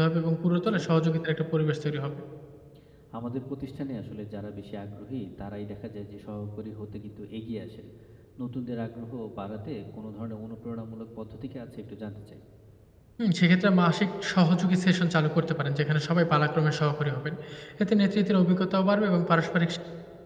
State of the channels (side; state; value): both; identical; correlation 1.00